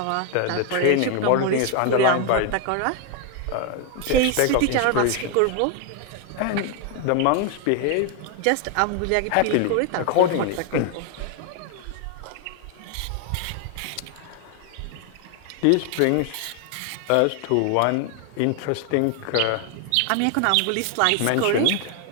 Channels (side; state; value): both; different; correlation 0.01